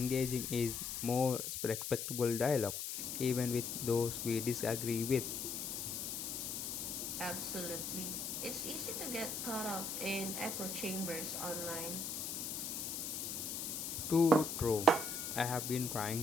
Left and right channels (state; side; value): noise; left; hiss, 4 dB below the sound